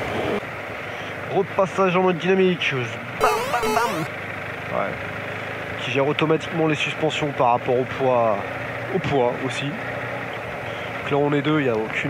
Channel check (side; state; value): both; identical; correlation 1.00